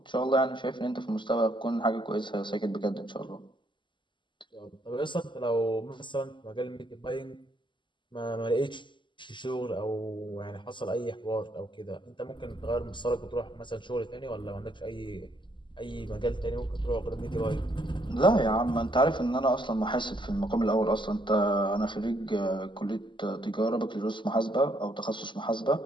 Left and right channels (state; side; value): late; right; 0.23 ms